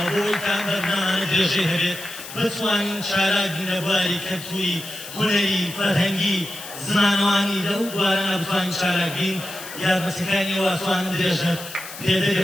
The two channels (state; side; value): noise; left; hiss, 13 dB below the sound